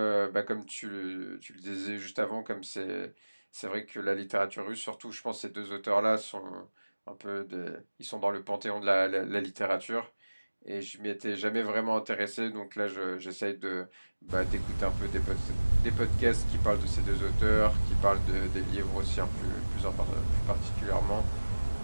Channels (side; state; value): both; inverted; correlation -1.00